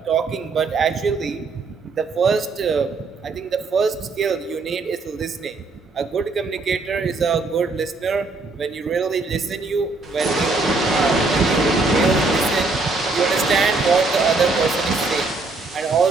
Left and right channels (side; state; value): left; quieter; 3.7 dB